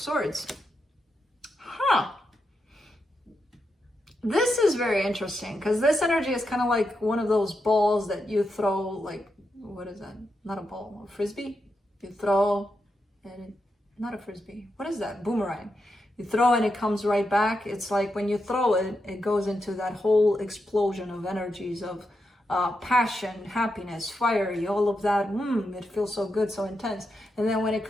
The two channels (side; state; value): both; normal; correlation 0.86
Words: Huh. This is very interesting because this energy is kind of like one of those balls that you throw, like, what is that? Not a ball, a frisbee? You throw and not a frisbee. What is that? Boomerang. You throw and it comes right back. It's like when you throw it, it goes into that whole explosion of energies of passion, happiness, fiery, all of that. It feels so good, so intense. And then when it